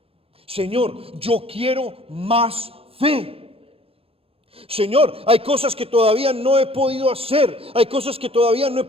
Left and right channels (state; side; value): late; left; 0.27 ms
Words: Señor, yo quiero más fe. Señor, hay cosas que todavía no he podido hacer, hay cosas que todavía no he